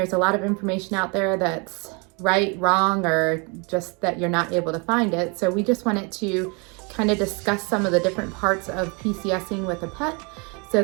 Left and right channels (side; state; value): left; quieter; 31.9 dB